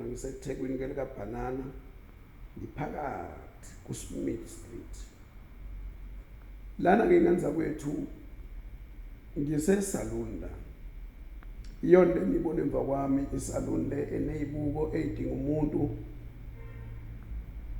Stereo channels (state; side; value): identical; both; correlation 1.00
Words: ngiseThekwini ke likaBhanana, ngiphakathi kuSmith Street. Lana ke ngenza kwethu ngisesalon la. Iyona ngibona emva kwami isalon le eneyibuko edinga umuntu